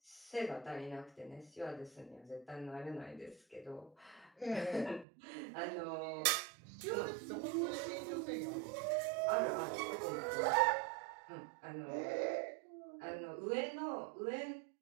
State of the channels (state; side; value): drops out; left; at 5.1 s